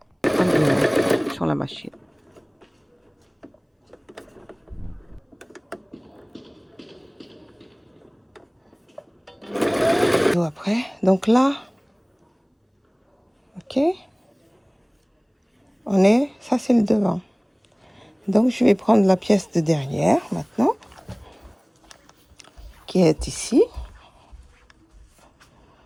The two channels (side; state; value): both; identical; correlation 1.00